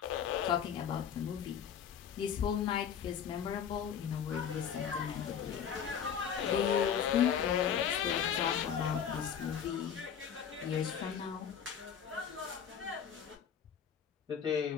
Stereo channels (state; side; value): quieter; right; 8.1 dB